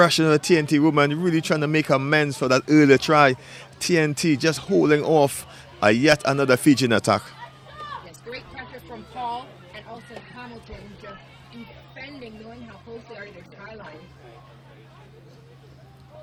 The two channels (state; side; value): identical; both; correlation 1.00